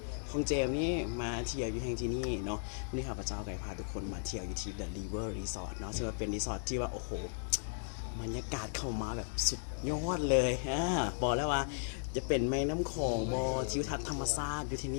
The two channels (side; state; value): right; silent; digital silence